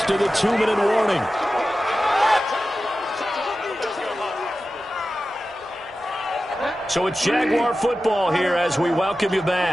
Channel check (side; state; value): right; noise; rumble, 30 dB below the sound